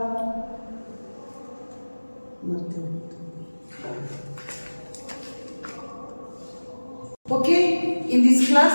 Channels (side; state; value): both; inverted; correlation -1.00